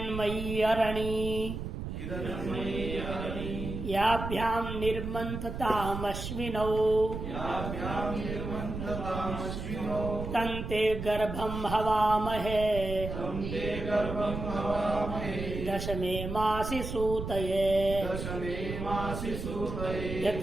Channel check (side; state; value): right; noise; rumble, 6 dB below the sound